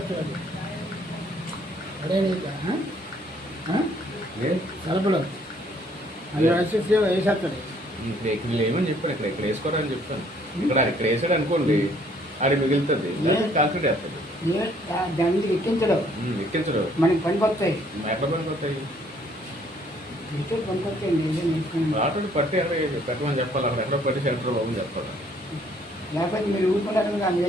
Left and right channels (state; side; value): normal; both; correlation 0.63